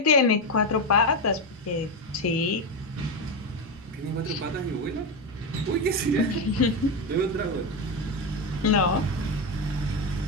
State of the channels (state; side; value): normal; both; correlation 0.11